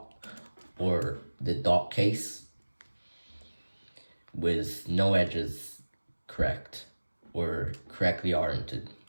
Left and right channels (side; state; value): both; inverted; correlation -1.00